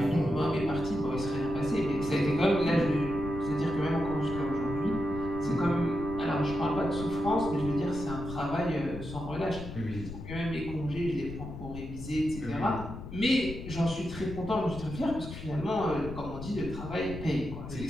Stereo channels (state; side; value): noise; left; rumble, 9 dB below the sound